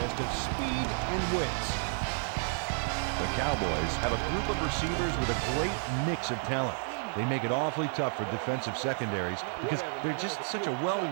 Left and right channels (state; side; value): silent; left; 57 dB below the other